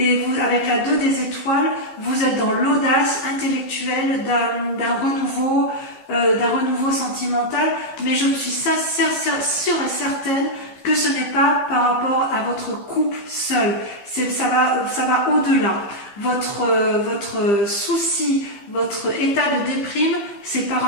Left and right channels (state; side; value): late; right; 15 ms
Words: vous, avec la 2 des étoiles, vous êtes dans l'audace intellectuelle d'un renouveau sentimental. Mais je suis sûre et certaine que ce n'est pas par rapport à votre couple seul. Ça va au-delà. Votre souci, votre état de déprime, c'est par